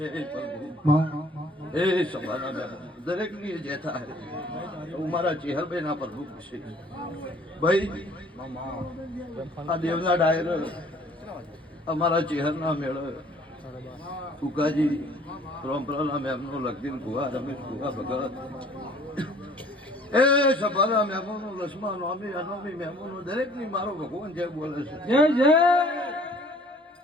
પ્રભુ એ સભાના દરેક ની જે થાય હું મારા ચેહરભાઈ ના પ્રભુ છે ભાઈ આ દેવના ડાયર અમારા ચેહરના મેળ ફુકાજી પરંપરાના મેમનો લગદીન ભુવા રમેશ ભુવા ભગત એ સભાના મેમોનો લક્ષ્મણ નોમી અનોમી મેમોનો દરેક ની મારો ભગવાન જય બોલે છે જય જય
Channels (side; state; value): both; normal; correlation 0.55